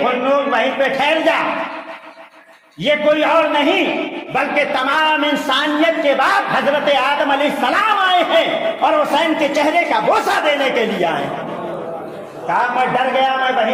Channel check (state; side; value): identical; both; correlation 1.00